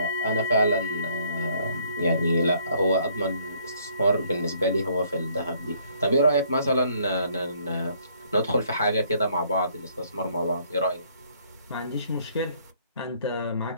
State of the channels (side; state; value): both; inverted; correlation -0.64